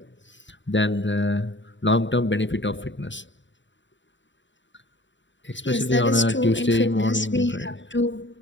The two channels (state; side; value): late; right; 0.54 ms